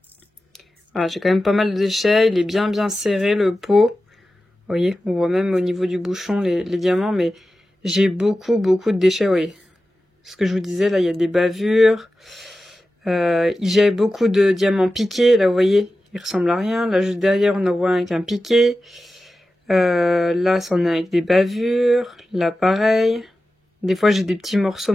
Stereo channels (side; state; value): both; normal; correlation 0.93